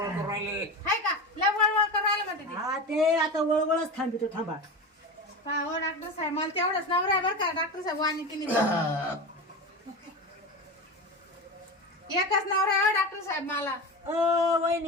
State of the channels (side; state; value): both; normal; correlation 0.24